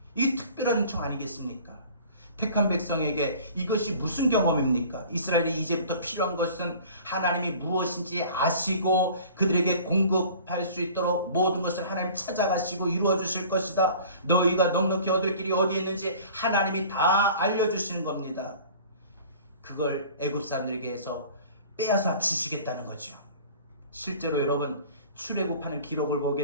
이 특별한 은총 아니겠습니까? 택한 백성에게 이것이 무슨 경험입니까? 이스라엘이 이제부터 필요한 것은 하나님이 무엇인지 아시고 그들에게 공급할 수 있도록 모든 것을 하나님 찾아가시고 이루어 주실 것이다. 너희가 넉넉히 얻을 길이 어디에 있는지 하나님이 다 알려주시는 겁니다. 그걸 애굽 사람들에게 해서 빼앗아 주시겠다는 거죠. 실제로 여러분 출애굽하는 기록을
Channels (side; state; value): both; inverted; correlation -0.46